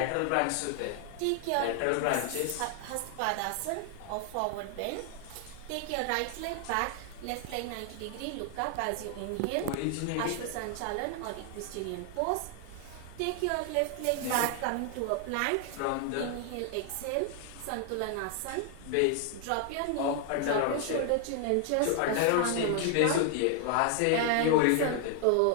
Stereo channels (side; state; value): both; different; correlation 0.00